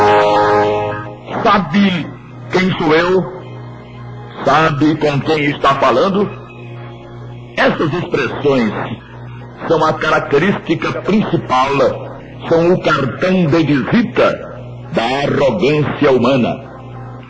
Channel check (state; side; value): identical; both; correlation 1.00